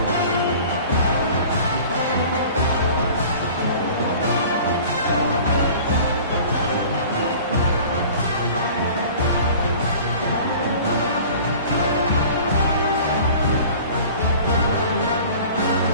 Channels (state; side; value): inverted; both; correlation -0.44